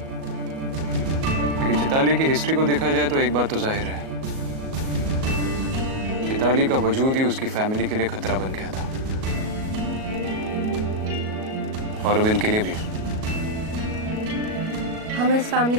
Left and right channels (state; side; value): late; left; 37 ms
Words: लेकिन चैताली की हिस्ट्री को देखा जाए तो एक बात तो जाहिर है, चैताली का वजूद ही उसकी फैमिली के लिए खतरा बन गया था, और अब इनके लिए भी। हमें इस फैमिली